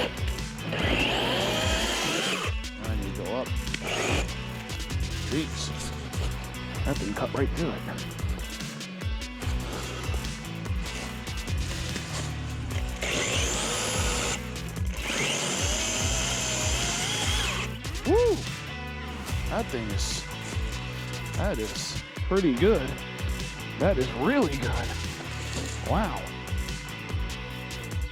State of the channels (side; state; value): both; identical; correlation 1.00